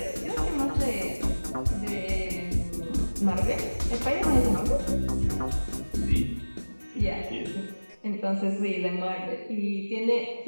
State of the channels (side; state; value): both; inverted; correlation -1.00